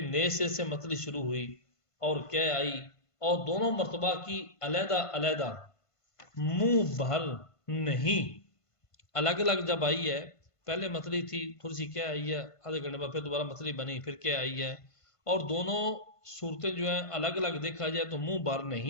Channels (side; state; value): right; late; 1.5 ms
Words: نئے سے متلی شروع ہوئی اور کہ آئی، اور دونوں مرتبہ کی علیحدہ علیحدہ منہ بھر نہیں، الگ الگ جب آئی ہے، پہلے متلی تھی، تھوڑی سی کیا آئی ہے، آدھے گھنٹے بعد پھر دوبارہ متلی بنی، پھر کیا آئی ہے، اور دونوں صورتیں جو ہیں الگ الگ دیکھا جائے تو منہ بھر